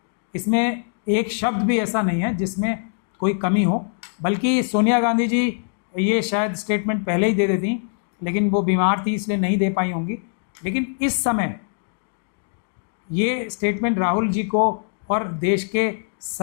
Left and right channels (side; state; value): right; silent; 64 dB below the other